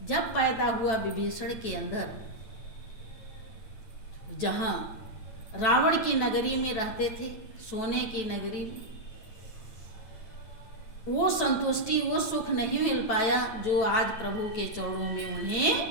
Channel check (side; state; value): right; late; 9.1 ms